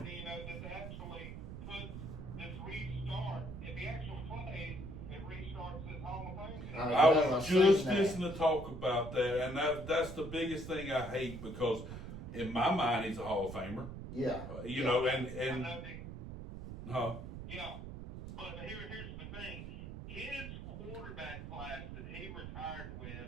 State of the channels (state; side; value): noise; right; rumble, 9 dB below the sound